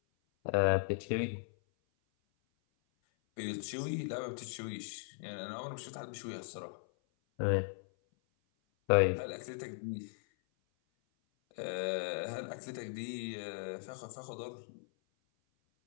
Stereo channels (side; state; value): right; silent; 52 dB below the other